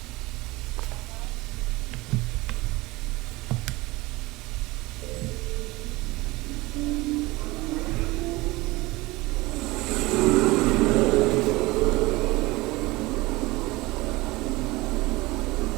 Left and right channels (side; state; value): left; quieter; 21.3 dB